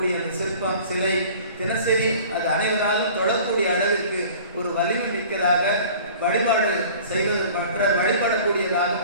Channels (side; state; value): both; inverted; correlation -0.45